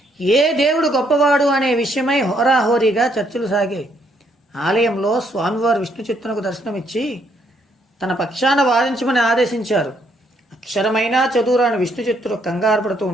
ఏ దేవుడు గొప్పవాడు అనే విషయమై హోరాహోరీగా చర్చలు సాగాయి. ఆలయంలో స్వామివారు విష్ణుచిత్తునకు దర్శనమిచ్చి తన పక్షాన వాదించమని ఆదేశించారు. అక్షరమైనా చదువురాని విష్ణుచిత్తుడు కంగారు పడుతూ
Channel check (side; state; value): both; normal; correlation 0.71